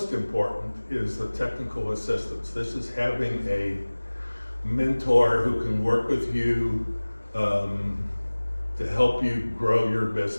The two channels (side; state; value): both; inverted; correlation -1.00